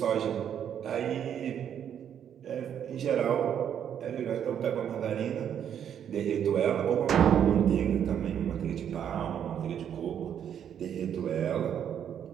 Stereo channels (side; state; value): left; quieter; 9.1 dB